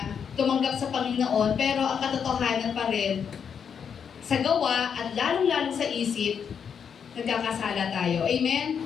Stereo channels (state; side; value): quieter; right; 7.2 dB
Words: tumanggap sa Panginoon, pero ang katotohanan pa rin, sa gawa at lalong-lalo sa isip, nagkakasala tayo.